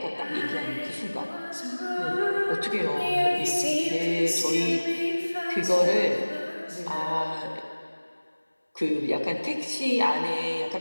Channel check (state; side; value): inverted; both; correlation -1.00